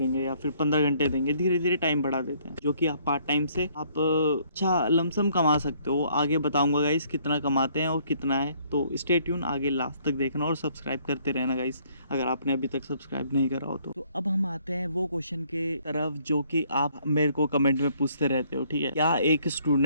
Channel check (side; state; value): both; inverted; correlation -0.64